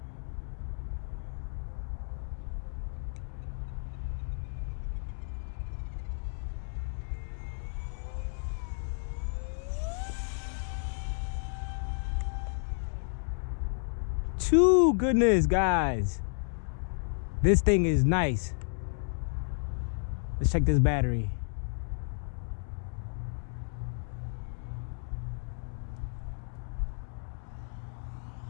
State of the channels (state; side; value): silent; right; digital silence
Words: Too goodness, guys. This thing is nice. Let's check this battery.